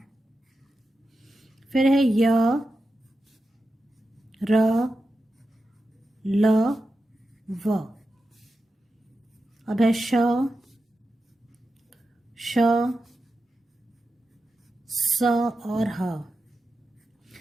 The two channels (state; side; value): normal; both; correlation 0.90